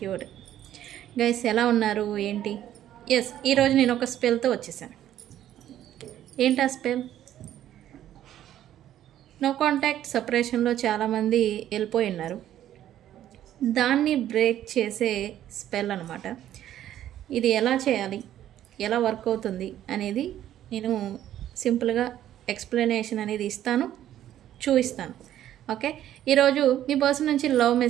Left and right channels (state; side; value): quieter; left; 11.9 dB